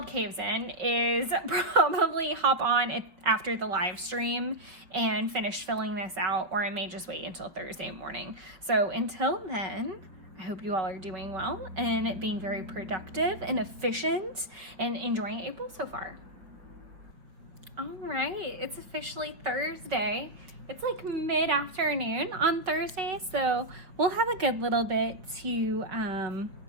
caves in, is probably hop on it after the live stream and finish filling this out, or I may just wait until Thursday morning. So until then, I hope you all are doing well and being very productive and efficient and enjoying April so far. All right, it's officially Thursday. It's like mid-afternoon on Thursday, so we'll have a good little bit to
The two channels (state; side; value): late; left; 5.0 ms